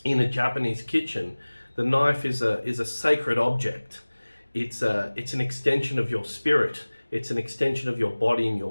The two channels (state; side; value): inverted; both; correlation -1.00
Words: in a Japanese kitchen, the knife is a sacred object. It's an extension of your spirit. It's an extension of your body in